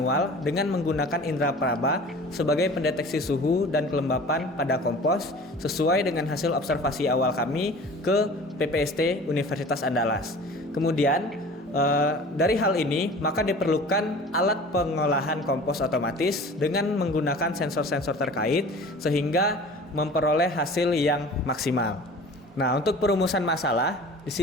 dengan menggunakan indera peraba sebagai pendeteksi suhu dan kelembapan pada kompos sesuai dengan hasil observasi awal kami ke PPST Universitas Andalas. Kemudian dari hal ini maka diperlukan alat pengolahan kompos otomatis dengan menggunakan sensor-sensor terkait sehingga memperoleh hasil yang maksimal. Nah, untuk perumusan masalah di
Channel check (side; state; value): both; normal; correlation 0.42